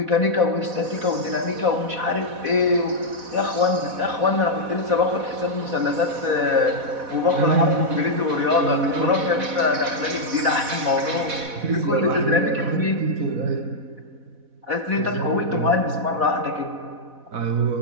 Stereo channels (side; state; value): left; late; 4.1 ms